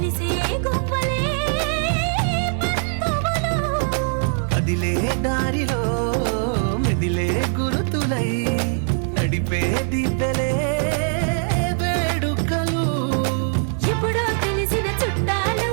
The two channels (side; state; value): left; silent; digital silence